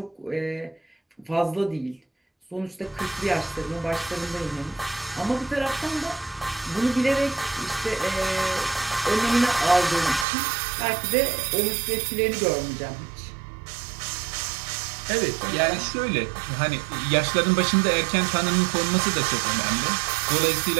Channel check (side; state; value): left; drops out; at 10.2 s